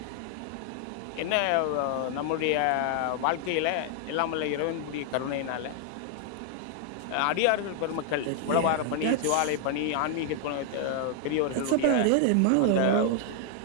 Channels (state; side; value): different; both; correlation 0.00